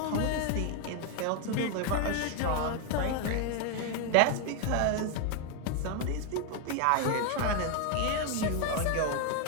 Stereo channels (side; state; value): both; different; correlation 0.01